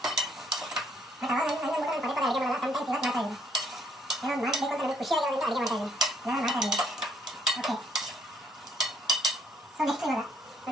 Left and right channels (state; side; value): normal; both; correlation 0.66